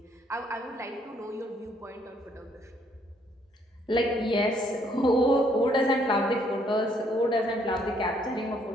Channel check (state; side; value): normal; both; correlation 0.68